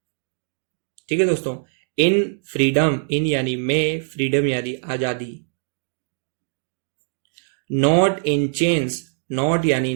ठीक है दोस्तों। इन फ्रीडम, इन यानी में, फ्रीडम यानी आजादी। नॉट इन चेन्स, नॉट यानी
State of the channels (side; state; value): left; silent; digital silence